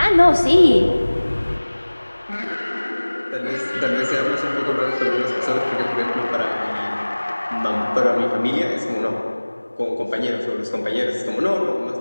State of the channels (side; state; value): both; inverted; correlation -1.00